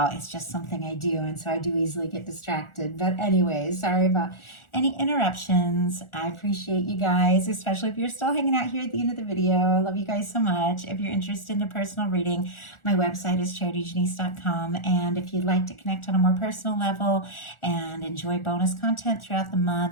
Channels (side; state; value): right; late; 1.4 ms